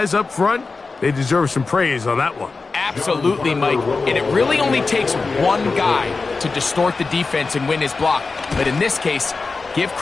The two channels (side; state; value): right; quieter; 4.1 dB